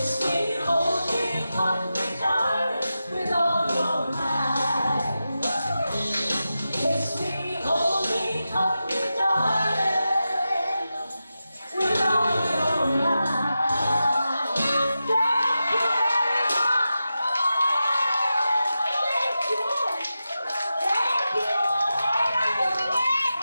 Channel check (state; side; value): inverted; both; correlation -0.91